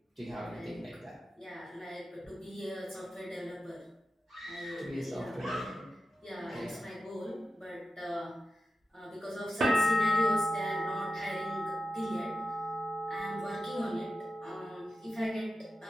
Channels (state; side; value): normal; both; correlation 0.92